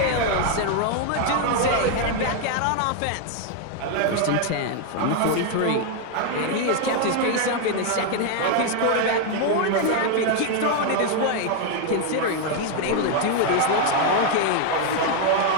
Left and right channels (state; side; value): different; both; correlation 0.00